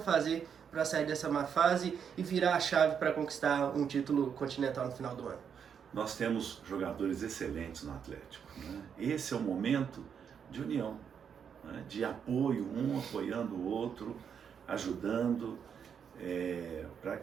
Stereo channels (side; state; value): left; quieter; 7.4 dB